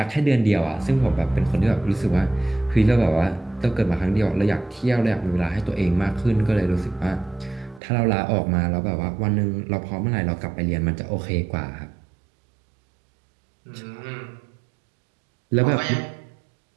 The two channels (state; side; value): drops out; left; at 7.8 s